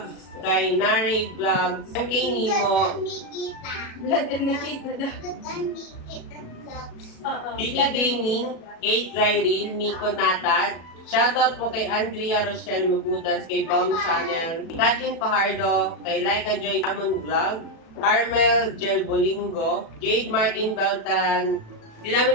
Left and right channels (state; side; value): late; right; 36 ms